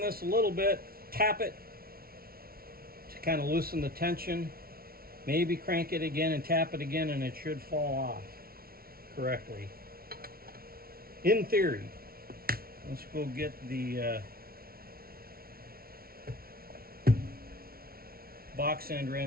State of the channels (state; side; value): late; left; 0.44 ms